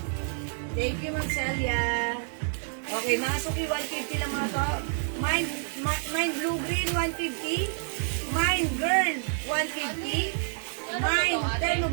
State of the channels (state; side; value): silent; left; 59 dB below the other